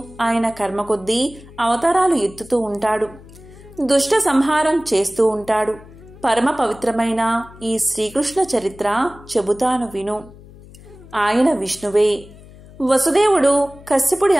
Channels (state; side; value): noise; left; hum, 20 dB below the sound